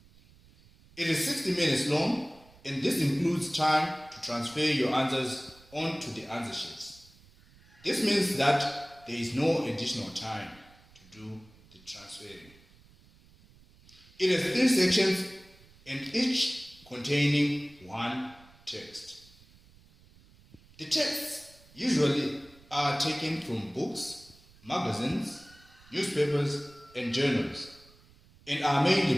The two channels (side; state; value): right; noise; rumble, 26 dB below the sound